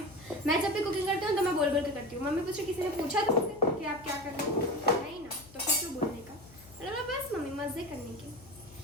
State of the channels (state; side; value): noise; left; hum, 21 dB below the sound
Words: मैं जब भी कुकिंग करती हूँ तो मैं बोल के करती हूँ। मम्मी पूछे किसी ने पूछा तुमसे कि आप क्या कर रहे हो? नहीं ना, तो फिर क्यों बोलने का? मतलब बस मम्मी मज़े करने के।